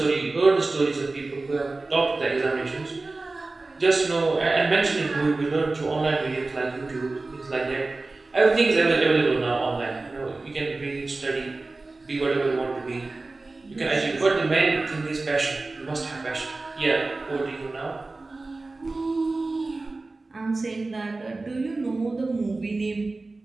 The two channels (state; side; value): quieter; left; 3.4 dB